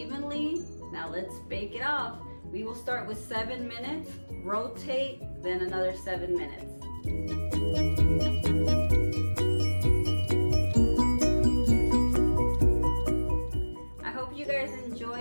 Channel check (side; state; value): both; inverted; correlation -1.00